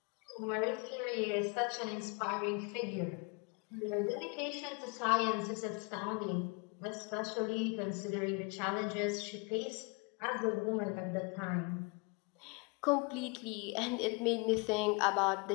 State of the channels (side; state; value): right; quieter; 30.9 dB